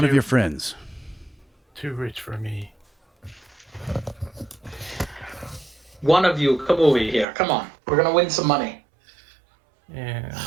of your friends? Too rich for me. One of you, come over here. Come on. We're going to win some money. And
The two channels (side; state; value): left; drops out; at 7.2 s